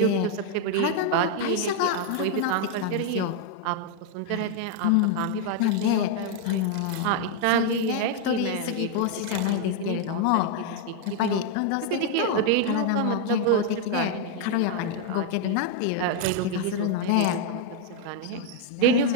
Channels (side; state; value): both; different; correlation 0.00